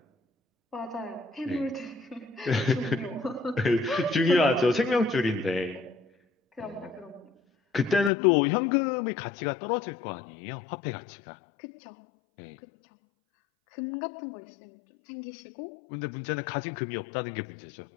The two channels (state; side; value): drops out; right; at 8.1 s